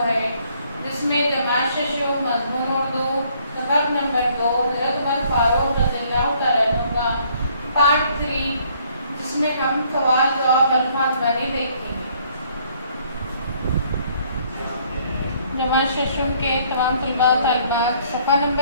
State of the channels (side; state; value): both; inverted; correlation -0.64